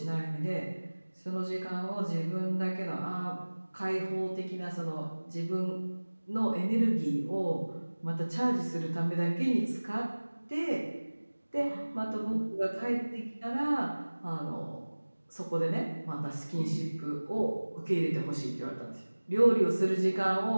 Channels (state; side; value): inverted; both; correlation -1.00